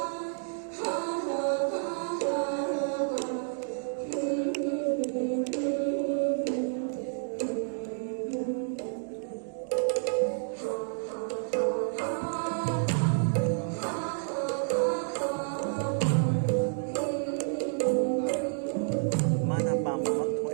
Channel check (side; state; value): left; silent; digital silence